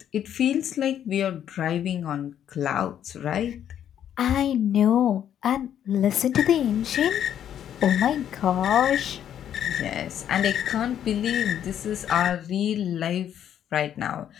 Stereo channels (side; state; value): right; quieter; 9.9 dB